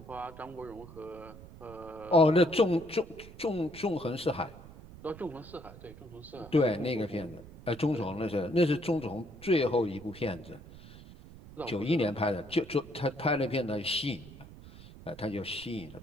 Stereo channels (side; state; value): right; noise; rumble, 18 dB below the sound